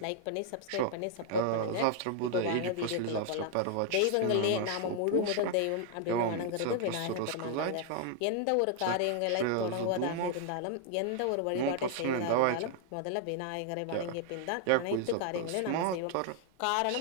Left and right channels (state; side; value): different; both; correlation 0.00